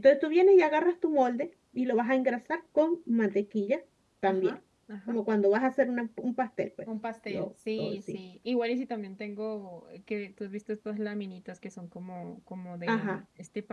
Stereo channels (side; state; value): both; identical; correlation 1.00